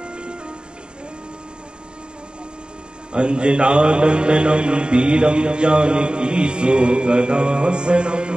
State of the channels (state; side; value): late; left; 0.050 ms